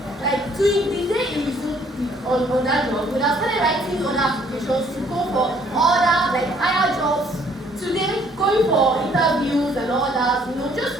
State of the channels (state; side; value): normal; both; correlation 0.62